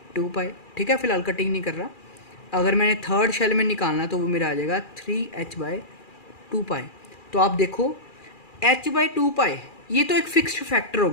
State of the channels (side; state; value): right; late; 2.4 ms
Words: पाई। ठीक है, फिलहाल कटिंग नहीं कर रहा। अगर मैंने थर्ड शेल में निकालना है तो वो मेरा आ जाएगा 3h/2 पाई। तो आप देखो h/2 पाई ये तो एक फिक्स्ड फैक्टर हो